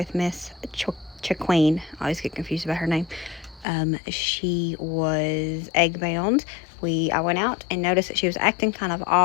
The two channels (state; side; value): drops out; right; at 3.7 s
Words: Miss Chaqueen. I always get confused about her name. She was egg bound. I went out and noticed that she was acting kind of